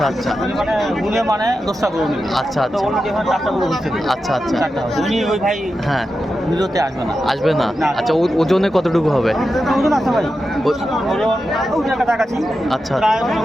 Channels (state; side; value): normal; both; correlation 0.90